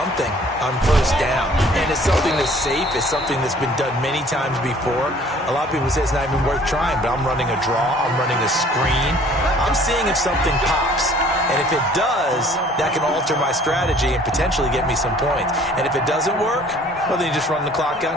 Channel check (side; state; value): both; normal; correlation 0.54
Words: on first down, and it's something that's safe. It's something that's been done many times before. A lot of people say it's not even worth trying, but I'm running a draw. I'm running a screen. I'm seeing if something pops. And if it does, that can alter my strategy and potentially get me some points. And if it doesn't work, well, then you just run the clock out